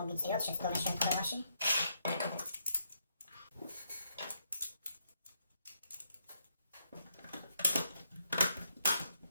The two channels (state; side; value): inverted; both; correlation -0.78